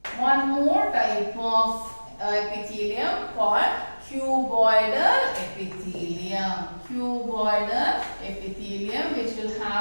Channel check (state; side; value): inverted; both; correlation -1.00